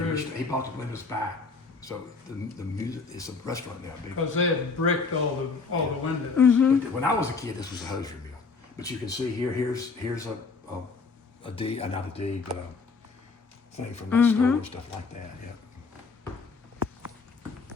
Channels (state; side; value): quieter; right; 4.5 dB